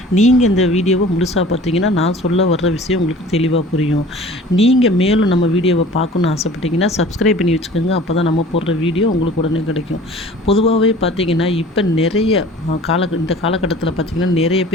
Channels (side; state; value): both; normal; correlation 0.45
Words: நீங்கள் இந்த வீடியோவை முழுசாக பார்த்தீங்கன்னா நான் சொல்ல வர்ற விஷயம் உங்களுக்கு தெளிவாக புரியும். நீங்கள் மேலும் நம்ம வீடியோவை பார்க்கணுன்னு ஆசைப்பட்டீங்கன்னா சப்ஸ்கிரைப் பண்ணி வச்சுக்கோங்க. அப்போ தான் நம்ம போடுற வீடியோ உங்களுக்கு உடனே கிடைக்கும். பொதுவாகவே பார்த்தீங்கன்னா இப்போ நிறைய இந்த காலகட்டத்தில் பார்த்திங்கன்னா நிறைய